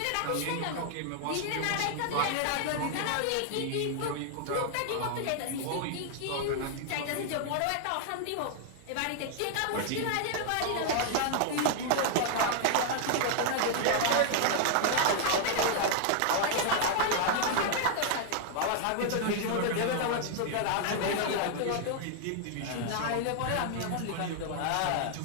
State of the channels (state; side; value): different; both; correlation 0.00